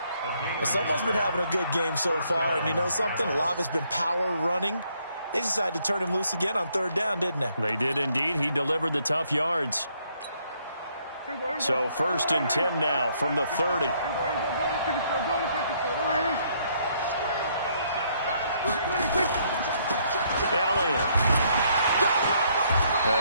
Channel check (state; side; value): inverted; both; correlation -0.69